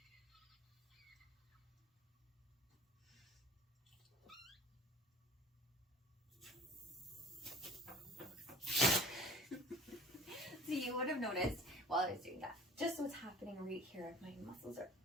So you would have noticed while I was doing that, just what's happening right here. My muscles are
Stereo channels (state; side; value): normal; both; correlation 0.47